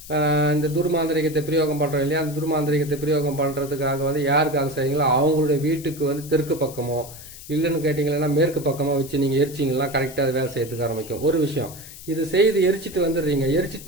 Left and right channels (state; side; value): noise; left; hiss, 16 dB below the sound